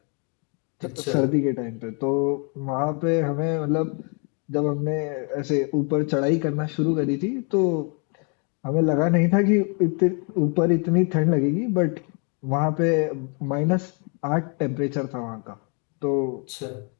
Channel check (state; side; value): quieter; right; 37.1 dB